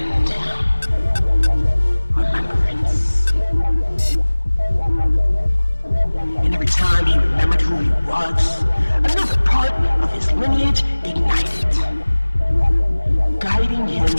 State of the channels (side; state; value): both; inverted; correlation -1.00